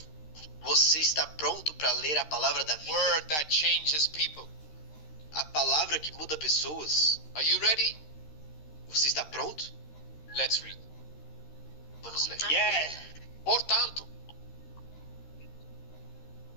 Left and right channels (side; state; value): right; late; 13 ms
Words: Você está pronto para ler a palavra da vida? Word that changes people. A palavra que muda pessoas? Are you ready? Você está pronto? Let's read. Vamos ler. Yeah. Portanto,